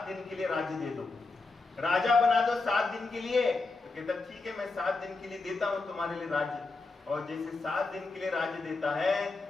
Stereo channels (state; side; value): quieter; right; 3.7 dB